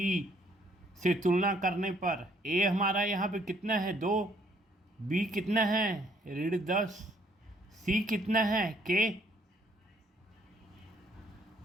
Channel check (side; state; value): both; normal; correlation 0.66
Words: से तुलना करने पर a हमारा यहाँ पे कितना है 2, b कितना है ऋण 10, c कितना है k।